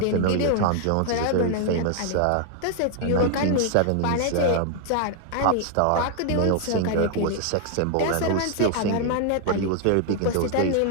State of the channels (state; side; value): different; both; correlation 0.00